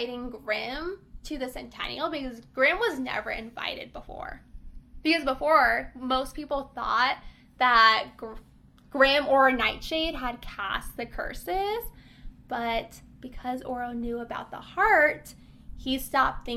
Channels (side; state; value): both; identical; correlation 1.00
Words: Grimm to the Centennial, because Grimm was never invited before. Because before, most people thought that Grimm or Nightshade had cast the curses, but because Oro knew about the heart, he stopped